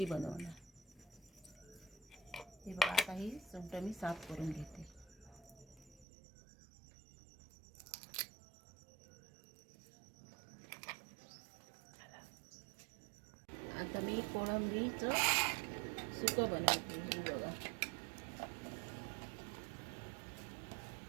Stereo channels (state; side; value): drops out; left; at 6.1 s